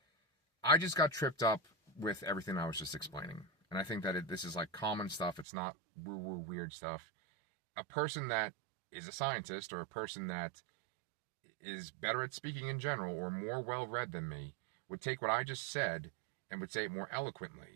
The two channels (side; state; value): left; drops out; at 5.5 s